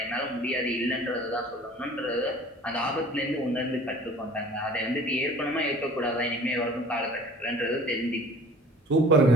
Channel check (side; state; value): both; normal; correlation 0.47